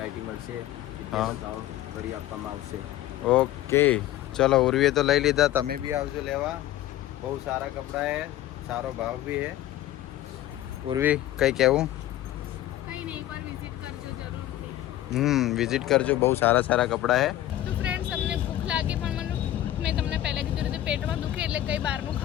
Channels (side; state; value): right; quieter; 13.7 dB